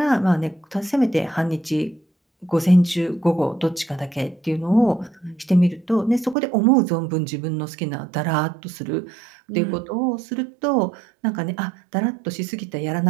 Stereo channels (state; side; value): drops out; left; at 6.4 s